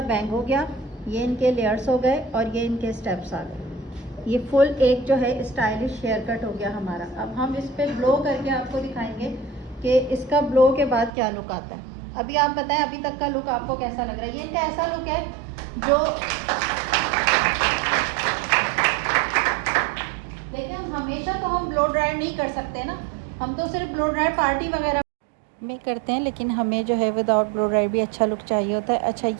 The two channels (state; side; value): drops out; left; at 11.1 s